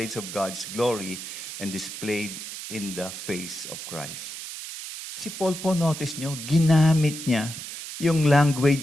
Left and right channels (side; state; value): right; noise; hiss, 9 dB below the sound